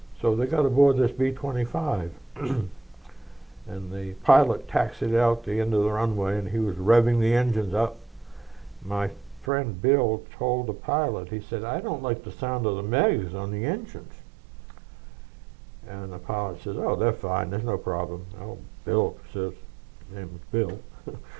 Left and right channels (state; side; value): drops out; left; at 9.5 s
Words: So they got aboard this B-25. And the pilot taxied out the end of the runway, and he was revving the engines up. My friend Bill told the pilot, he said, I don't like the sound of the megs on the engines. And the pilot says, oh, they're fine, there's no problem. Oh, Bill says, his name was Bill.